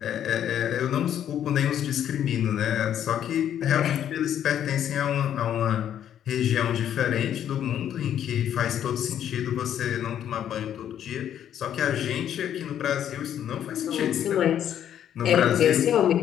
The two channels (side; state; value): right; quieter; 10.1 dB